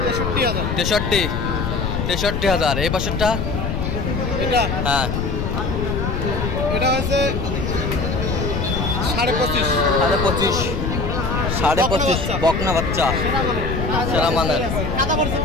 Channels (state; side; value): noise; left; rumble, 1 dB below the sound